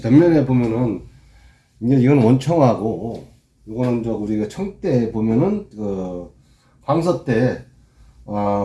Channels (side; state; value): both; identical; correlation 1.00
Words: 보면은 이제 이건 원청하고 이거는 저 우리가 청대 보면은 황서 때